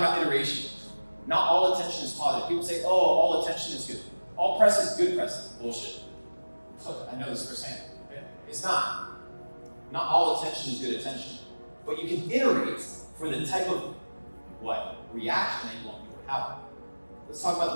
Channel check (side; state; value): both; inverted; correlation -1.00